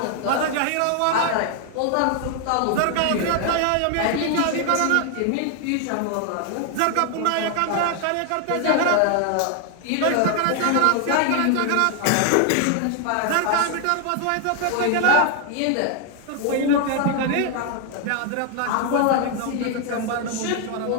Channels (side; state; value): both; different; correlation 0.00